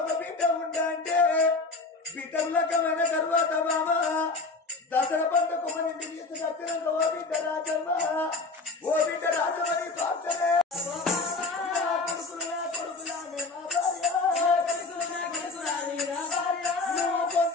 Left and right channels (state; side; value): quieter; right; 3.6 dB